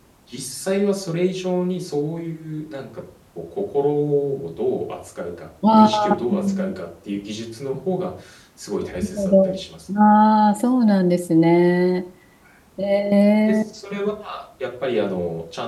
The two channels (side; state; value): both; identical; correlation 1.00